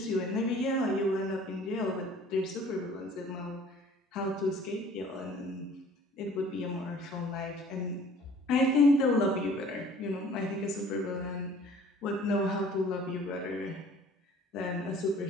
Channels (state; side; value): normal; both; correlation 0.51